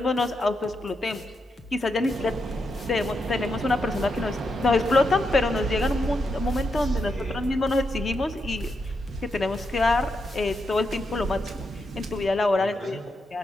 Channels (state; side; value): normal; both; correlation 0.83